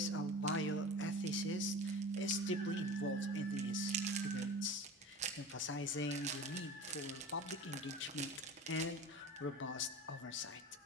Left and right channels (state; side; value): normal; both; correlation 0.35